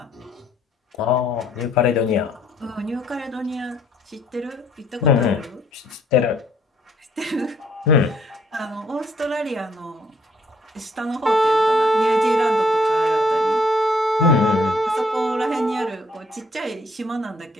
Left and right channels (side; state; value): both; normal; correlation 0.64